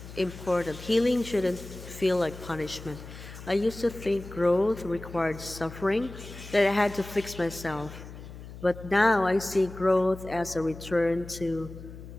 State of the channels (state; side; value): noise; left; hum, 14 dB below the sound